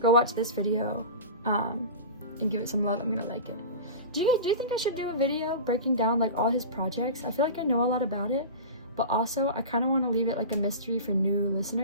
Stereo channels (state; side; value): inverted; both; correlation -0.30